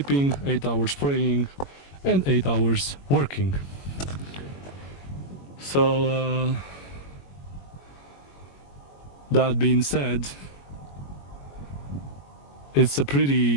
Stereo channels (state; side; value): late; right; 21 ms